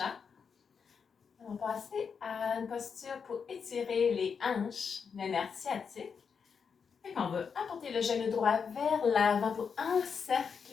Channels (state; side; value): quieter; right; 6.2 dB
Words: va passer à une posture pour étirer les hanches, le nerf sciatique. On va apporter le genou droit vers l'avant pour